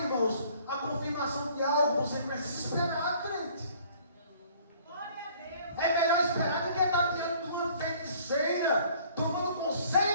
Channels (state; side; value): inverted; both; correlation -0.56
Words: irmãos, a confirmação de algo. Você precisa esperar, crente. É melhor esperar do que estar diante de uma feiticeira, tomando